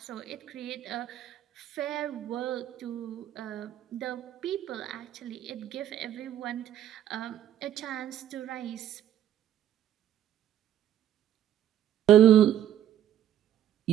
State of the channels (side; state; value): left; quieter; 11.1 dB